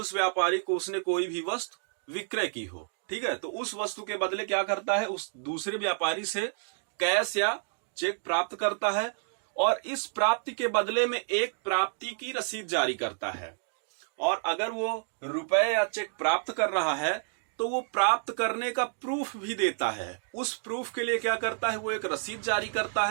व्यापारी को उसने कोई भी वस्तु विक्रय की हो, ठीक है, तो उस वस्तु के बदले क्या करता है, उस दूसरे व्यापारी से कैश या चेक प्राप्त करता है और इस प्राप्ति के बदले में एक प्राप्ति की रसीद जारी करता है। और अगर वो रुपए या चेक प्राप्त कर रहा है तो वो प्राप्त करने का प्रूफ भी देता है। उस प्रूफ के लिए क्या करता है, वो एक रसीद जारी करता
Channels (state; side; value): silent; left; digital silence